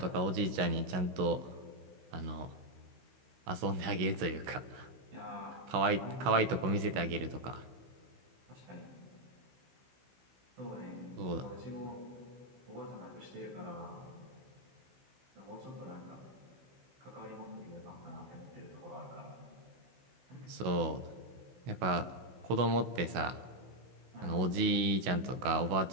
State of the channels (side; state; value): left; late; 16 ms